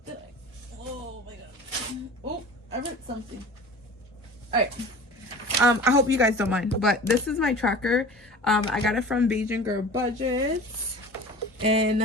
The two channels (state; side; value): normal; both; correlation 0.39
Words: Oh my God. Oh, I wrote something. All right. I hope you guys don't mind, but this is my tracker. I got it from Beijing Girl Budgets,